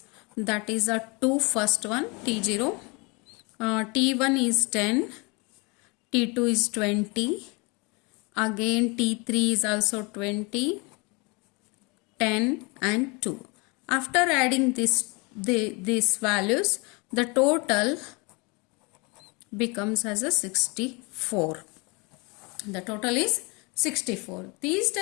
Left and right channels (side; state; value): right; quieter; 29.0 dB